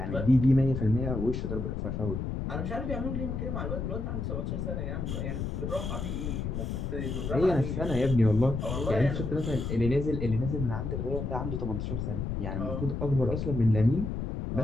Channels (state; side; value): noise; left; rumble, 3 dB below the sound